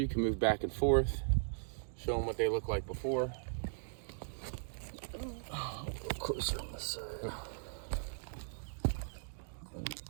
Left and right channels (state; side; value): silent; left; digital silence